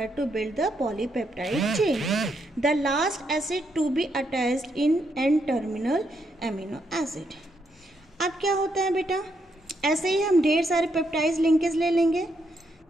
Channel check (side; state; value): both; normal; correlation 0.78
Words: to build the polypeptide chain. The last acid to be attached in N terminal amino acid. अब क्या होता है बेटा? ऐसे ही हम ढेर सारे पेप्टाइड लिंकेज ले लेंगे,